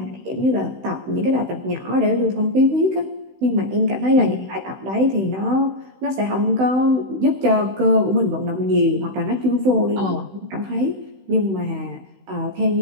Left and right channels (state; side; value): late; left; 16 ms